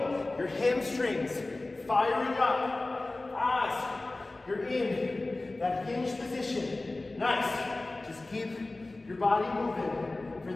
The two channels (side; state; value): right; quieter; 3.0 dB